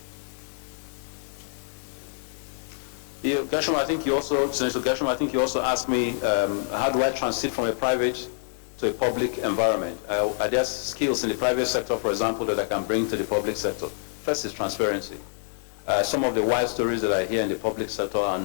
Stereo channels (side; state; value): right; silent; digital silence